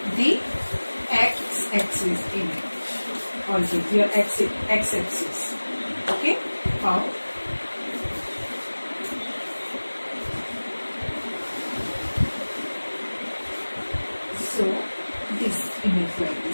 the x-axis image, also your x-axis. Okay, how? So this image like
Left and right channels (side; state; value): both; inverted; correlation -1.00